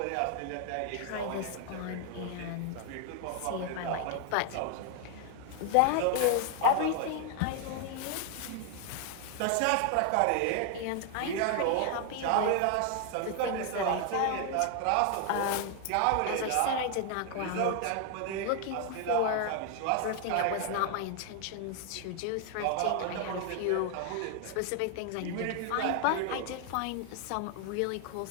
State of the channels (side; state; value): both; different; correlation 0.00